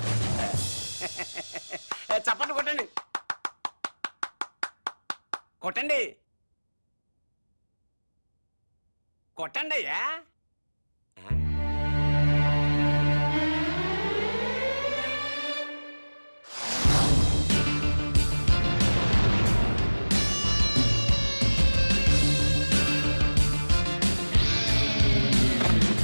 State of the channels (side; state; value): both; inverted; correlation -1.00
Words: చప్పట్లు కొట్టండి, కొట్టండి, కొట్టండి అయ్యా.